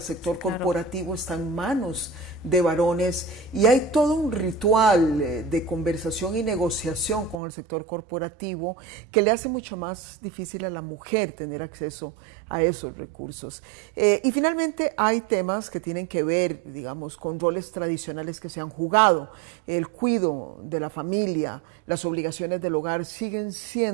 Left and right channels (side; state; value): left; drops out; at 7.4 s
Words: sector corporativo está en manos de varones y hay todo un ritual de conversación y negociación con el sector corporativo que le hace mucho más difícil a la mujer tener acceso a esos recursos. Y finalmente hay temas que tienen que ver, digamos, con roles tradicionales que se han jugado. El cuidado de la familia, las obligaciones del hogar siguen